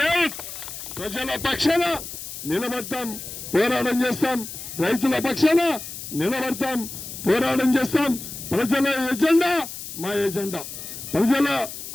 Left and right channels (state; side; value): noise; left; hiss, 10 dB below the sound